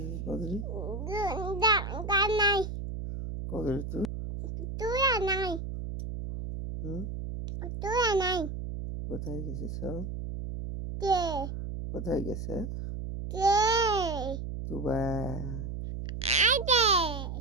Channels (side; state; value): right; noise; hum, 6 dB below the sound